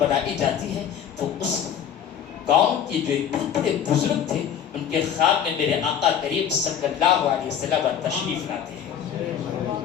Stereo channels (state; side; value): quieter; right; 8.8 dB